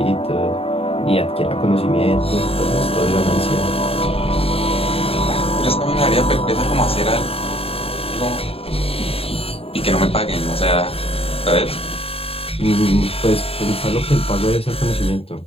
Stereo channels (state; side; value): late; right; 0.28 ms